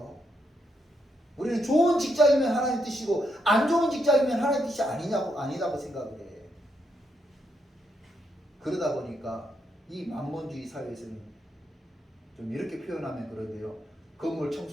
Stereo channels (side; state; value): both; normal; correlation 0.79